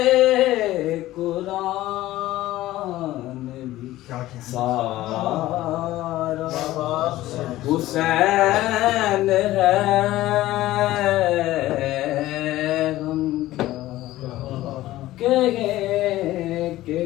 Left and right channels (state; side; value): quieter; right; 15.9 dB